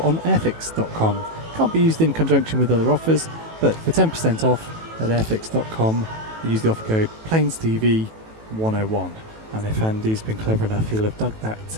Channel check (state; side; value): late; left; 18 ms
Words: on airfix.com. Can't be used in conjunction with other offers, but for 10% off at airfix.com, use the offer code PlanesTV101. And if Andy's been clever enough, he'll have dug that